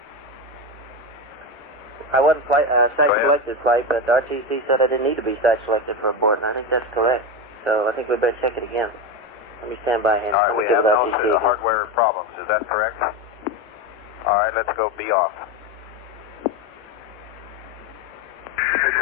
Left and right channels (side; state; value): both; normal; correlation 0.17